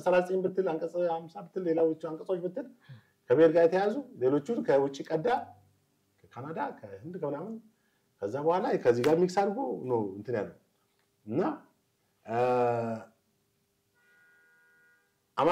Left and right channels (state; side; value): identical; both; correlation 1.00